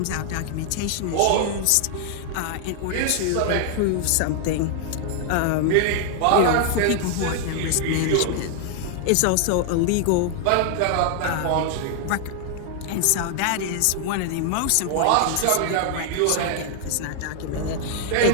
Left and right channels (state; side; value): different; both; correlation 0.00